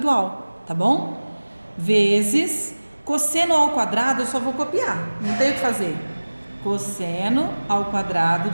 tá bom? Vezes cosseno ao quadrado, eu só vou copiar, não tenho o que fazer. Cosseno ao quadrado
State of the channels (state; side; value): inverted; both; correlation -1.00